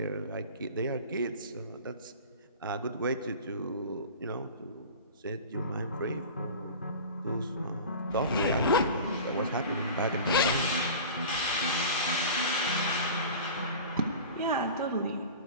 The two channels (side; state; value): both; inverted; correlation -0.36